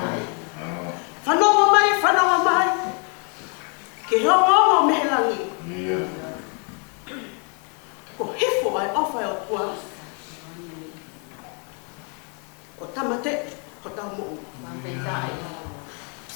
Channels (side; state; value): right; quieter; 38.1 dB